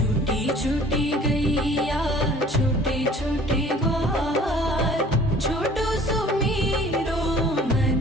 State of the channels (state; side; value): normal; both; correlation 0.51